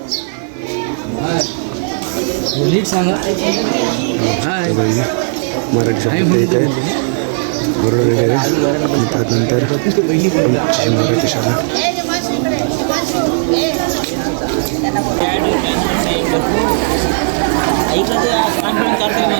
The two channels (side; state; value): left; silent; digital silence